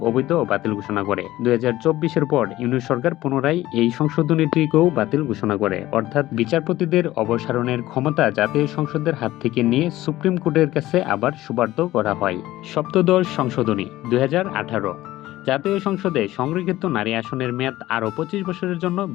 অবৈধ ও বাতিল ঘোষণা করে। 2024-এর পর ইউনিট সরকার পুনরায় এই সংশোধনীটিকেও বাতিল ঘোষণা করে, অর্থাৎ বিচারপতিদের অপসারণের ক্ষমতা জাতীয় সংসদের হাত থেকে নিয়ে সুপ্রিম কোর্টের কাছে আবার সুপার্দ করা হয়। সপ্তদশ সংশোধনী 2018, জাতীয় সংসদে সংরক্ষিত নারী আসনের মেয়াদ আরও 25 বছরের জন্য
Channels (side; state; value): right; quieter; 16.0 dB